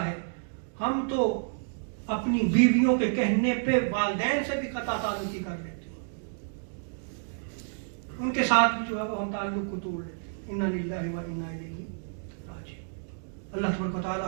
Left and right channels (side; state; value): left; silent; digital silence